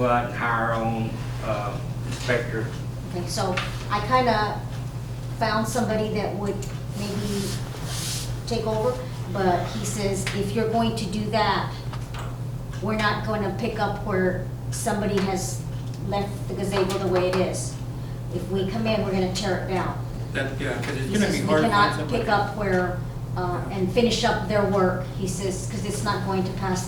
out and hire our own inspector? Okay, so I kinda found somebody that would maybe take over, but he says, if you're going to do that, we're not gonna pick up where somebody has left the gazebo the way it is. If we come in, we're gonna tear it down. Yeah, because it's He gonna says be we hard to find cannot somebody. pick up where, and finish up their work. He says, because it's not going to pass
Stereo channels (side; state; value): both; identical; correlation 1.00